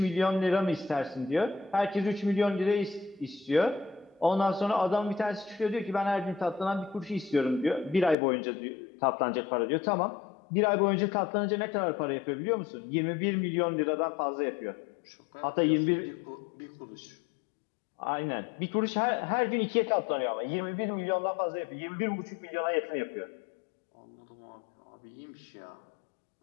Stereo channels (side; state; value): right; drops out; at 8.2 s